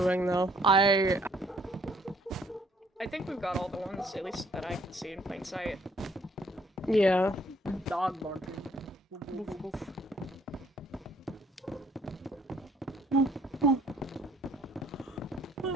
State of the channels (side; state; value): both; normal; correlation 0.63